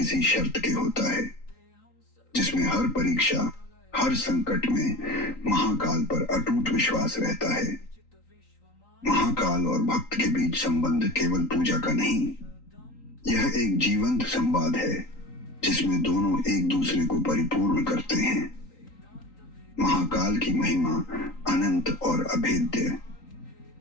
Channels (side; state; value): right; late; 3.9 ms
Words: शर्त के होता है, जिसमें हर परीक्षा, हर संकट में महाकाल पर अटूट विश्वास रहता है। महाकाल और भक्त के बीच संबंध केवल पूजा का नहीं, यह एक जीवंत संवाद है जिसमें दोनों एक दूसरे को परिपूर्ण करते हैं। महाकाल की महिमा अनंत और अभेद्य।